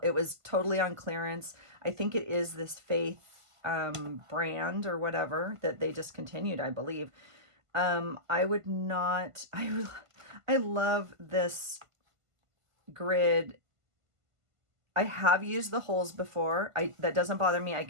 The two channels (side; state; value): left; late; 1.5 ms